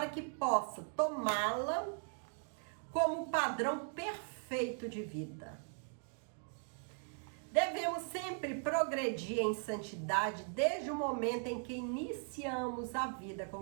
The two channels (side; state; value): left; silent; 52 dB below the other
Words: que possa tomá-la como padrão perfeito de vida. Devemos sempre progredir em santidade desde o momento em que iniciamos a vida